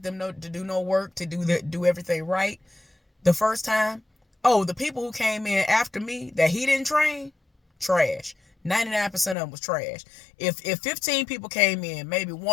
them to do no work, to do everything right the first time. Oh, the people who came in after me that he didn't train, trash. 99% of them was trash. If 15 people came in, maybe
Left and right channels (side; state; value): right; drops out; at 9.3 s